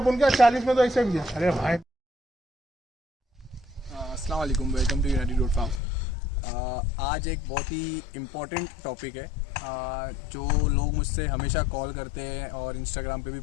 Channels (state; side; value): drops out; right; at 5.8 s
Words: क्या? 40 में तो ऐसे भी। अरे भाई अस्सलाम वालेकुम, welcome to United Goat Farm. आज एक बहुत ही इम्पोर्टेंट टॉपिक है जो लोग मुझसे हमेशा कॉल करते हैं और इंस्टाग्राम पे भी